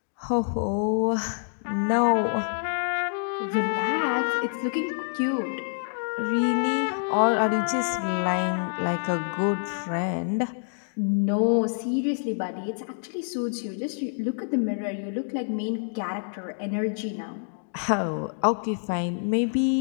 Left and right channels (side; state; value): right; silent; digital silence